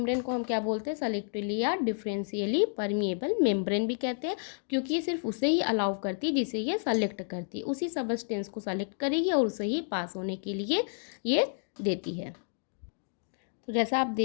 को हम क्या बोलते हैं, सेलेक्टिवली या डिफरेंशियली परमिएबल मेम्ब्रेन भी कहते हैं, क्योंकि ये सिर्फ उसे ही अलाउ करती है जिसे ये सेलेक्ट करती है, उसी सब्सटेंस को सेलेक्ट करेगी और उसे ही पास होने के लिए ये देती है। तो जैसा आप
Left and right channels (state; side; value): silent; right; digital silence